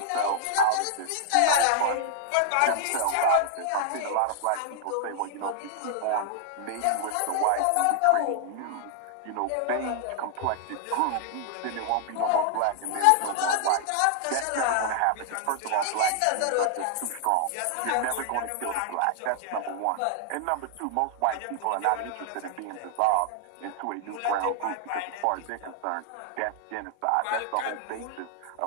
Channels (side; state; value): both; different; correlation 0.00